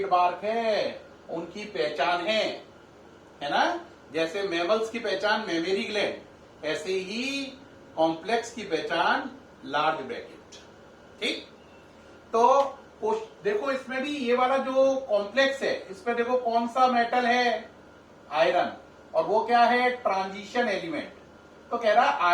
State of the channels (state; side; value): identical; both; correlation 1.00